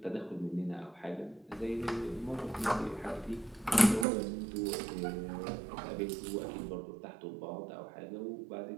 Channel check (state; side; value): drops out; left; at 4.0 s